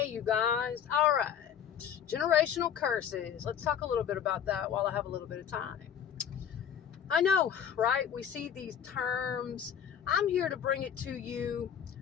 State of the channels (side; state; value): right; quieter; 8.6 dB